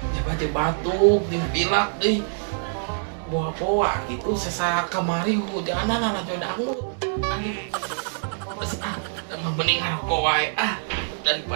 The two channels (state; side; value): silent; left; digital silence